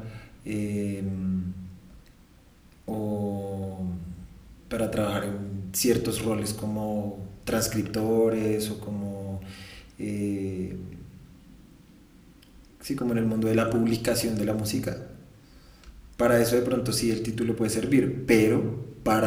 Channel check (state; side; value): identical; both; correlation 1.00